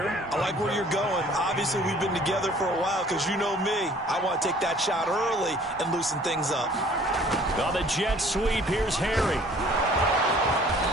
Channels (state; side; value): normal; both; correlation 0.54